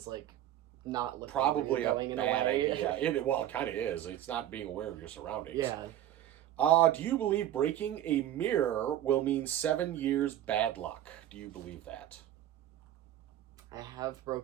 like, not looking Probably where you're going a bad idea. it Kind of is. It's not being aware of your surroundings. Yeah. Do you believe breaking a mirror will mean 7 years bad luck? Do you believe that? I have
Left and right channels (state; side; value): quieter; left; 12.2 dB